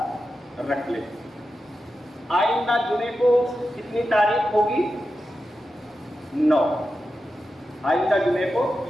رکھ لے۔ آئندہ جمعے کو کتنی تاریخ ہوگی؟ 9۔ آئندہ جمعے کو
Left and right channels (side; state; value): both; normal; correlation 0.90